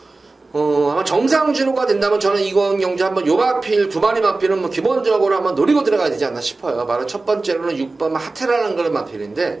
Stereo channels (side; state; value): left; quieter; 3.4 dB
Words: 아마 정상 주로가 된다면 저는 이번 경주 한번 요 마필, 두 마리 마필은 뭐 기본적으로 한번 노리고 들어가야 되지 않나 싶어요. 바로 첫 번째로는 6번 하테라는 그런